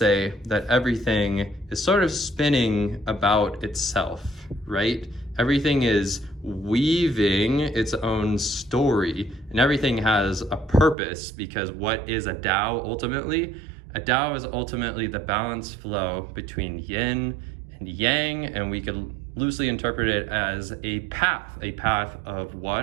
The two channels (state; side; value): drops out; left; at 11.0 s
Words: that everything is sort of spinning about itself, right? Everything is weaving its own story, and everything has a purpose, because what is a Tao ultimately? A Tao is ultimately the balanced flow between yin and yang, and we could loosely interpret it as a path of